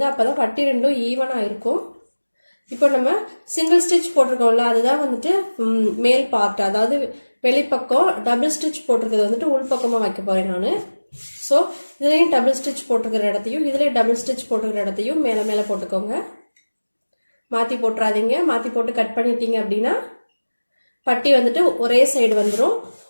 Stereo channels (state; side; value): inverted; both; correlation -1.00